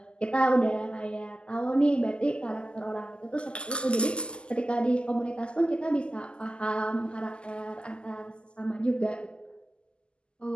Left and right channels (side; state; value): right; late; 0.050 ms